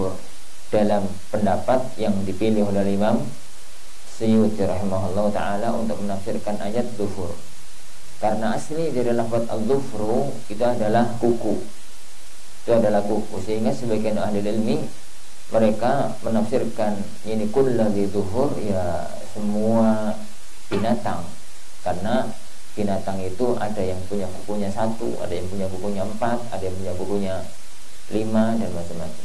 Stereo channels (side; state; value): both; identical; correlation 1.00